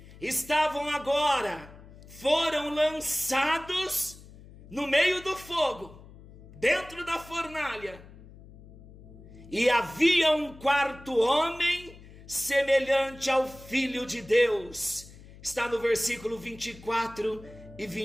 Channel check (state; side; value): noise; left; hum, 20 dB below the sound